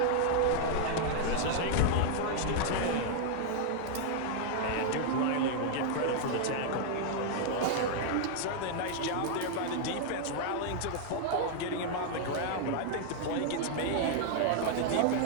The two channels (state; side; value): different; both; correlation 0.00